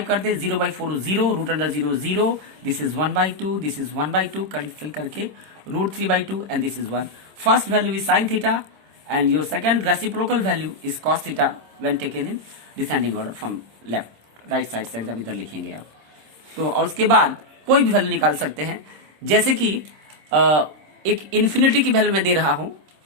कर दें। 0/4 0, √0 0, this is 1/2, this is 1/2, cancel करके √3/2 and this is 1। First value is sine theta and your second reciprocal value is cos theta when taken in descending order from left right side से एकदम इधर लिखेंगे आप। तो और उसके बाद कोई भी वैल्यू निकाल सकते हैं, जैसे कि एक इन्फिनिटी की वैल्यू मैं दे रहा हूं,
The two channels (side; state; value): left; late; 26 ms